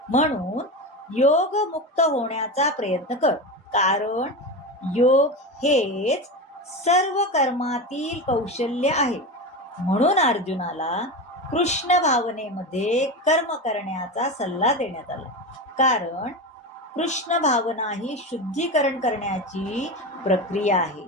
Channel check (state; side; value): normal; both; correlation 0.22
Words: म्हणून योग मुक्त होण्याचा प्रयत्न कर, कारण योग हेच सर्व कर्मातील कौशल्य आहे. म्हणून अर्जुनाला कृष्ण भावनेमध्ये कर्म करण्याचा सल्ला देण्यात आला, कारण कृष्ण भावना ही शुद्धीकरण करण्याची प्रक्रिया आहे,